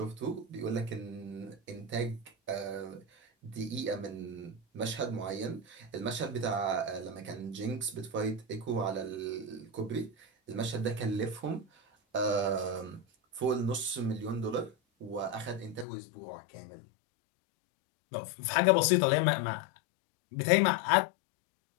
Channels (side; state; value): right; drops out; at 15.9 s